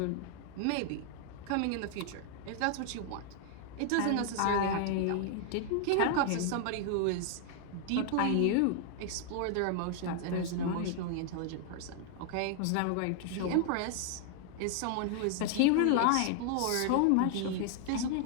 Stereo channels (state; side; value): different; both; correlation 0.00